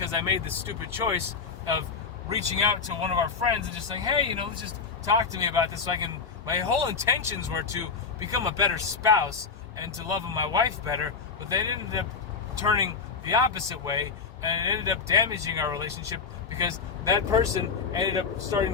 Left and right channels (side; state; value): right; quieter; 5.3 dB